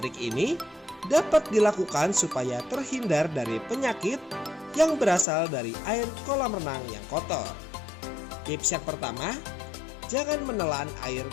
ini dapat dilakukan supaya terhindar dari penyakit yang berasal dari air kolam renang yang kotor. Tips yang pertama, jangan menelan air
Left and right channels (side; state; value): right; drops out; at 5.2 s